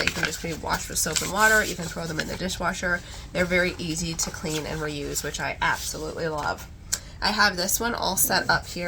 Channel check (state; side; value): identical; both; correlation 1.00